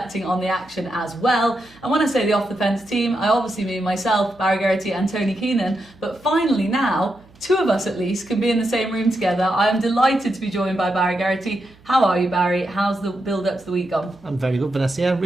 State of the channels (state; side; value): noise; right; hum, 27 dB below the sound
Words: on the action as well. And when I say the Off the Fence team, I obviously mean myself, Barry Geraghty and Tony Keenan, but finally now, two of us at least can be in the same room together. I am delighted to be joined by Barry Geraghty. How are you, Barry? How's the build up to the week gone? I'm very good, Vanessa. Yeah,